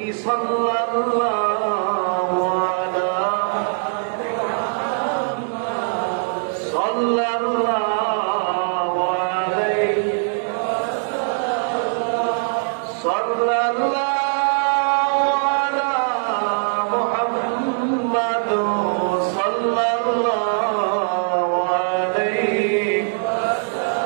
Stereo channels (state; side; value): silent; left; digital silence